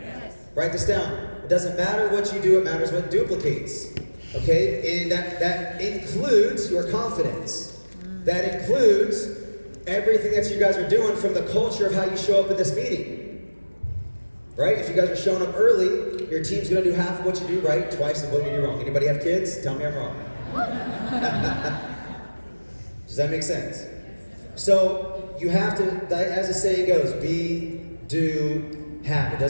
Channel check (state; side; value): inverted; both; correlation -1.00